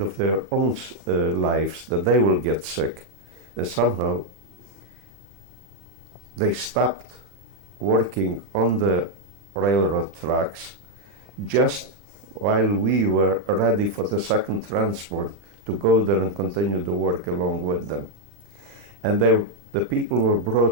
of their own lives, that they will get sick. And somehow they stopped working on the railroad tracks just while we were ready for the second transport to go there and continue the work along with them. And the people were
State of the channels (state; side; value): late; left; 36 ms